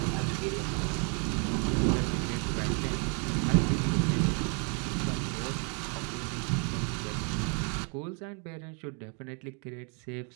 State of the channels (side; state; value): left; quieter; 37.0 dB